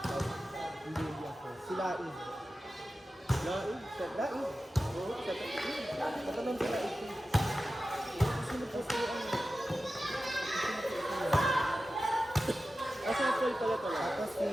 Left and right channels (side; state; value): both; normal; correlation 0.94